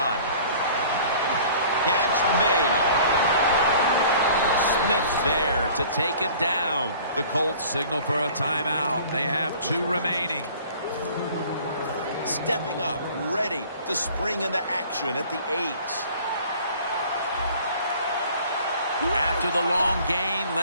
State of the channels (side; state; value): both; inverted; correlation -0.48